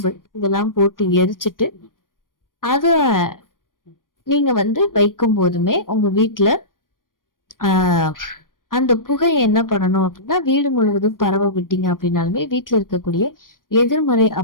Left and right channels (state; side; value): late; right; 0.90 ms